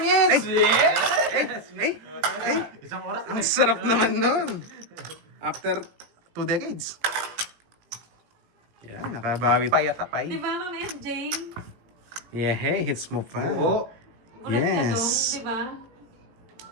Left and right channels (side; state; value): left; late; 18 ms